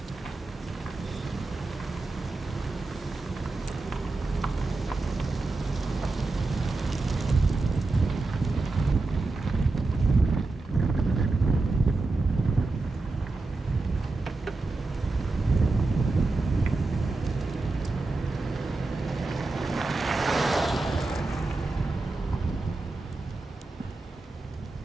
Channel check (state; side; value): quieter; left; 3.4 dB